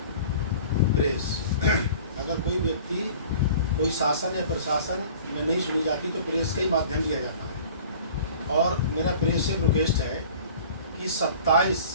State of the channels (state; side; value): inverted; both; correlation -0.45